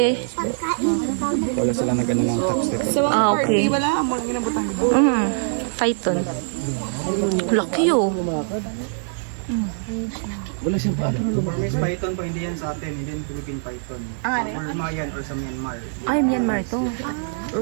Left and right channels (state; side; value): silent; left; digital silence